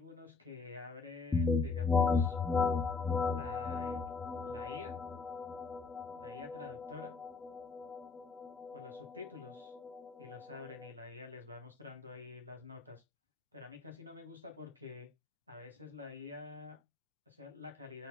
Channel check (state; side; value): quieter; right; 4.5 dB